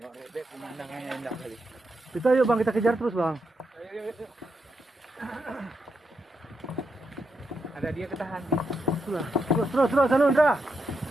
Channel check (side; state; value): both; normal; correlation 0.83